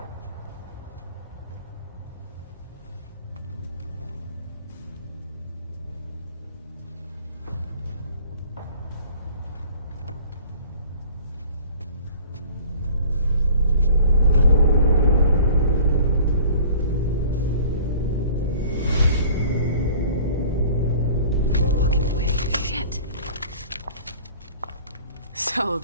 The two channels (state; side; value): inverted; both; correlation -0.48